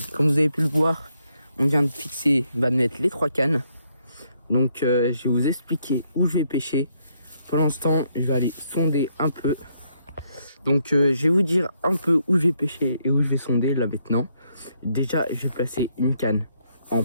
comme vous avez pu le voir, on vient de fixer, de mettre les 3 cannes. Donc je vais vous expliquer où je vais pêcher. Pour l'instant, je vais aller sonder un peu. Donc je vais vous dire un peu où je vais pêcher et où je vais sonder là maintenant. Déjà, je vais placer une canne en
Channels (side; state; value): both; inverted; correlation -0.74